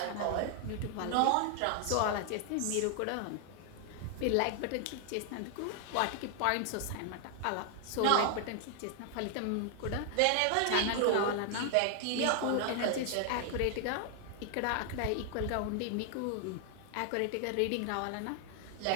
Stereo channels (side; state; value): both; different; correlation 0.00